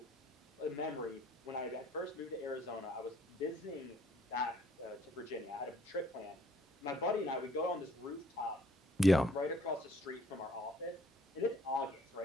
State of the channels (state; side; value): normal; both; correlation 0.61